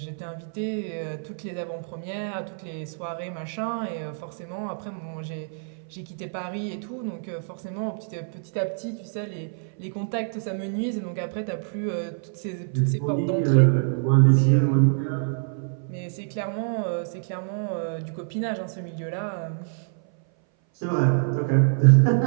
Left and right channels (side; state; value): left; silent; 58 dB below the other